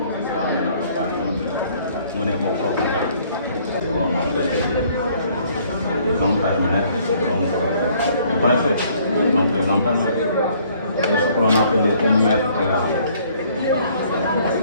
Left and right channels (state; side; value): inverted; both; correlation -0.61